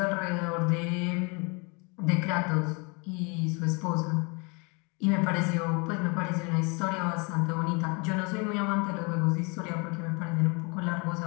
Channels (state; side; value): quieter; right; 31.1 dB